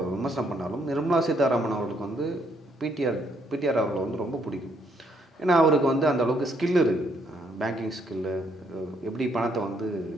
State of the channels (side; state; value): both; normal; correlation 0.71